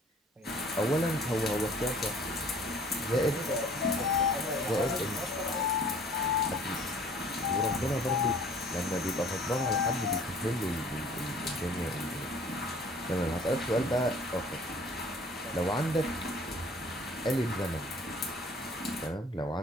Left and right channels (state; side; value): normal; both; correlation 0.52